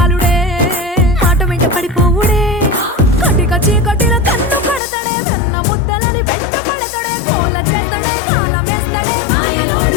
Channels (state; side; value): drops out; right; at 4.8 s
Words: మాట వెంట పడిపోవుడే కటిక చీకటిలో కన్ను కడతాడే వెన్న ముద్దలని వెంట పడతాడే కోల చేస్తాడే కాలమేస్తాడే